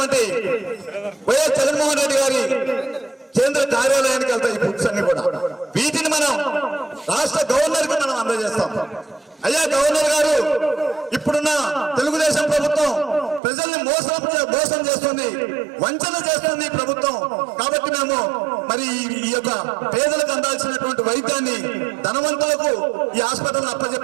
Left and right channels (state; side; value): drops out; left; at 13.4 s